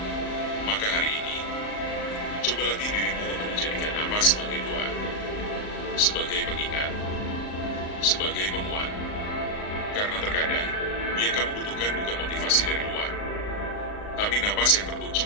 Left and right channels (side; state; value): right; late; 38 ms